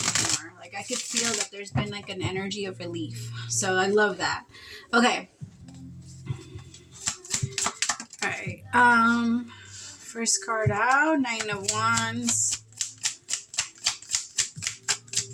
Like, I could feel that there's been like an energy of relief. So I love that. Okay. All right. First card out, 9 of Wands.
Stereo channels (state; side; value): identical; both; correlation 1.00